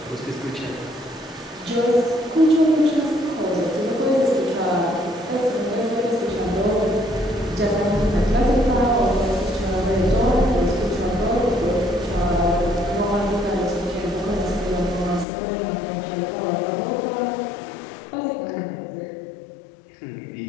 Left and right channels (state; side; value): drops out; right; at 15.2 s